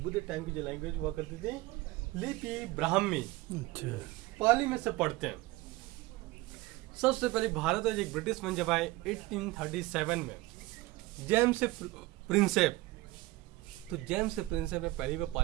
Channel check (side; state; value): left; quieter; 19.8 dB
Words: टाइम की जो लैंग्वेज हुआ करती थी लिपि ब्राह्मी, पाली में से पढ़ते हैं। सबसे पहले भारत में एक ब्रिटिश मन जब आए 1837 में, जेम्स प्रिंसेप। तो जेम्स प्रिंसेप ने पहली बार